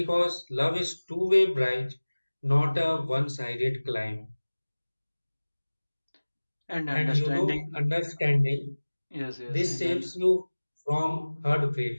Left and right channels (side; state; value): both; inverted; correlation -1.00